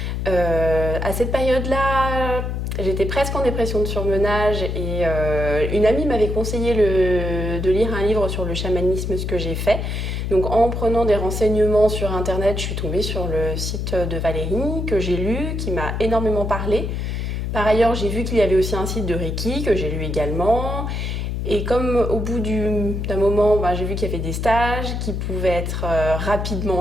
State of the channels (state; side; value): noise; left; hum, 2 dB below the sound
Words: À cette période-là, j'étais presque en dépression de surmenage et une amie m'avait conseillé de lire un livre sur le chamanisme, ce que j'ai fait. Donc en prenant des renseignements sur internet, je suis tombée sur le site de Valérie que j'ai lu, qui m'a énormément parlé. Par ailleurs, j'ai vu qu'il y avait aussi un site de Reiki que j'ai lu également. Et comme au bout d'un moment, j'ai vu qu'il y avait des stages qui pouvaient être